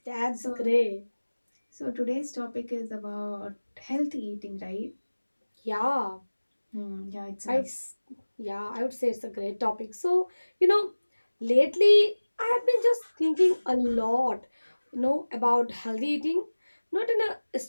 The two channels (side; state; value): both; inverted; correlation -1.00